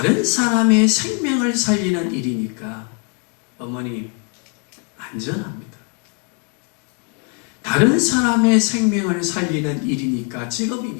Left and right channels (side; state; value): right; quieter; 31.1 dB